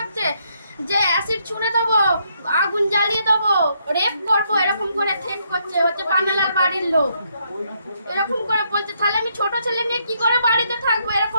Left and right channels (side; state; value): both; inverted; correlation -0.74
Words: যে অ্যাসিড ছুঁড়ে দেবো, আগুন জ্বালিয়ে দেবো, রেপ করবো, এরকম করে থ্রেট করছে। হচ্ছে পান্নালাল বাড়ির লোক, এরকম করে বলছে। তাহলে আমি ছোট ছেলে নিয়ে কি করে বাড়িতে থাকবো?